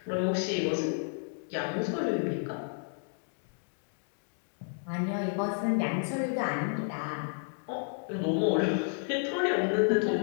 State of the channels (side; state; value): right; silent; 57 dB below the other